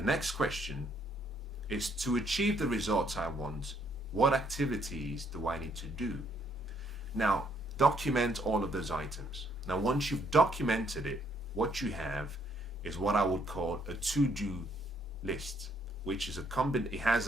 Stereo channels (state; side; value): normal; both; correlation 0.69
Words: next question is, to achieve the results I want, what activities do I need to do? Now, document all of those items. Now, once you've documented it, what you have is what I would call a to-do list, which is it has